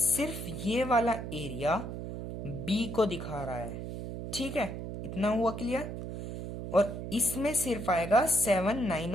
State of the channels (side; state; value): right; noise; hum, 7 dB below the sound